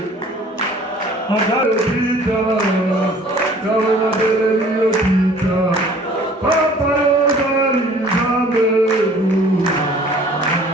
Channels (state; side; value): normal; both; correlation 0.52